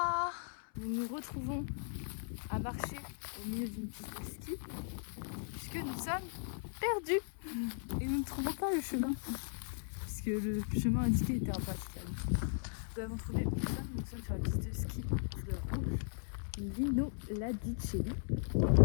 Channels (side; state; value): right; silent; 53 dB below the other